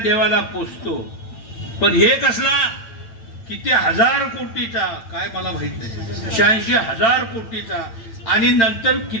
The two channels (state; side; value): late; right; 8.9 ms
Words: पोचतो. पण हे कसला किती हजार कोटीचा काय मला माहित नाही, 86,000 कोटीचा, आणि नंतर